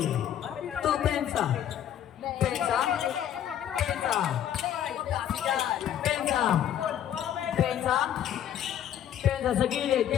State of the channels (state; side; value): quieter; right; 10.4 dB